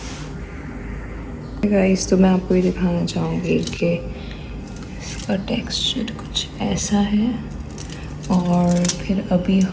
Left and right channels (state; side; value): identical; both; correlation 1.00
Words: गाइस, तो मैं आपको ये दिखाना चाहूँगी कि इसका टेक्सचर कुछ ऐसा है, और फिर अभी